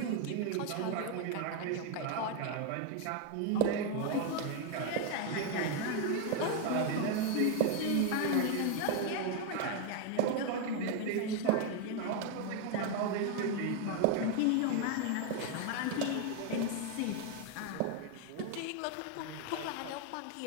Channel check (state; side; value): different; both; correlation 0.01